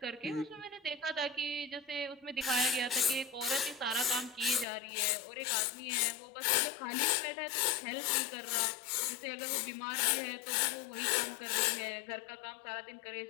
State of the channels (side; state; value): right; drops out; at 4.7 s